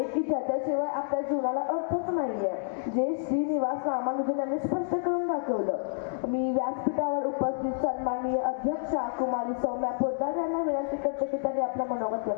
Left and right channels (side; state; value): right; silent; digital silence